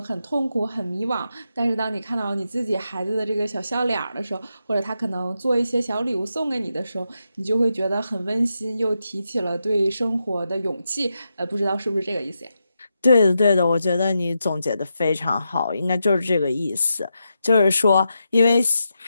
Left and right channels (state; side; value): inverted; both; correlation -0.86